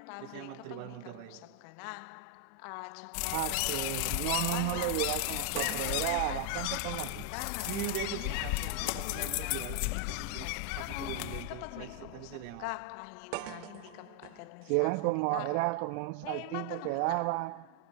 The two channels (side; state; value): both; different; correlation 0.00